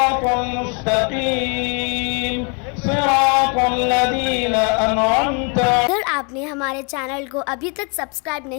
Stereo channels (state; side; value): quieter; right; 37.0 dB